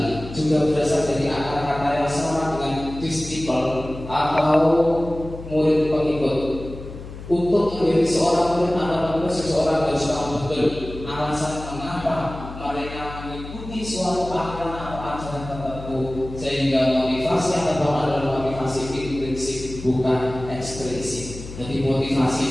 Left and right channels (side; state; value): left; noise; hum, 12 dB below the sound